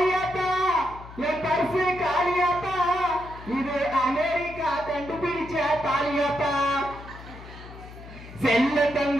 என் பரிசு காளியாத்தா இது அமெரிக்கா கண்டுபிடிச்ச தாலியாத்தா, செல்ல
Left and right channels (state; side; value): noise; left; hum, 16 dB below the sound